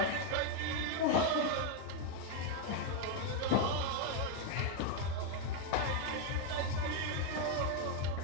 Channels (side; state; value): both; different; correlation 0.01